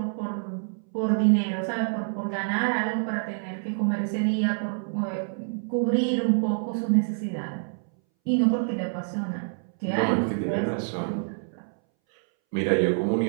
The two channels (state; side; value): silent; left; 60 dB below the other